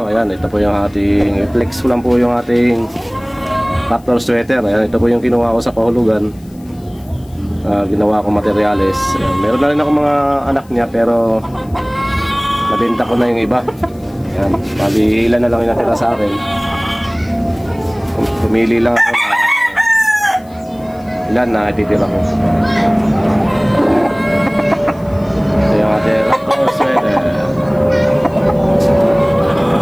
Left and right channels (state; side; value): noise; left; hiss, 29 dB below the sound